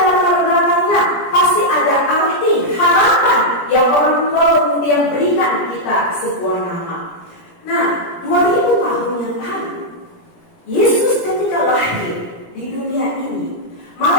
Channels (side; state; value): right; late; 17 ms